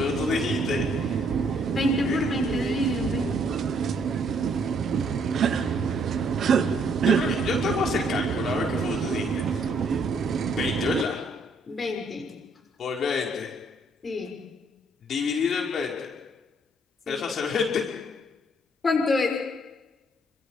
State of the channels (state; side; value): normal; both; correlation 0.67